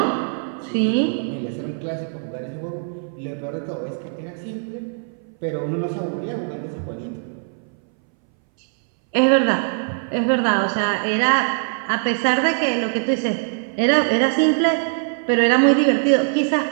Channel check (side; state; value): left; silent; 63 dB below the other